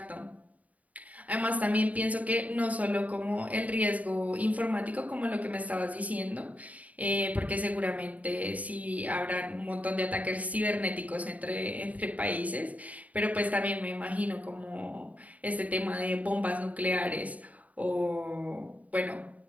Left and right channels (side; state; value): left; late; 0.071 ms